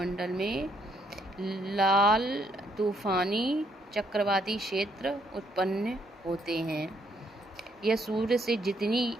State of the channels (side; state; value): both; normal; correlation 0.71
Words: में लाल तूफानी चक्रवाती क्षेत्र उत्पन्न होते हैं। यह सूर्य से जितनी